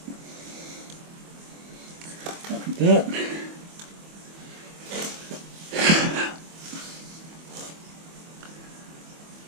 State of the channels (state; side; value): late; left; 24 ms